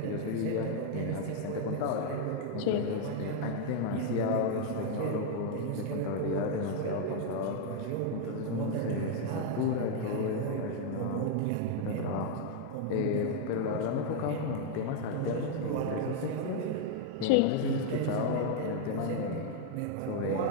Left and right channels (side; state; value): both; different; correlation 0.00